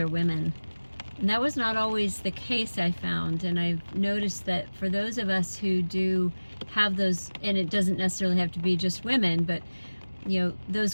women. And that was not always the case, I found. And I've noticed that for those of us who do have those, and it doesn't necessarily have to be just women, but those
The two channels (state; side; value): inverted; both; correlation -1.00